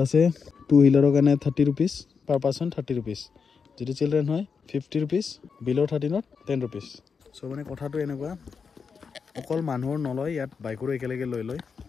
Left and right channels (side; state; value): right; quieter; 5.7 dB